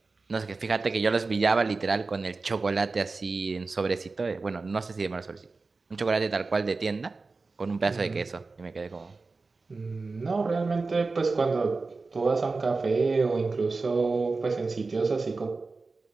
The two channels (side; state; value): left; quieter; 3.9 dB